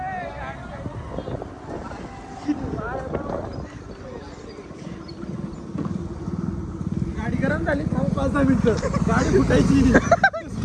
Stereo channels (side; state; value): both; identical; correlation 1.00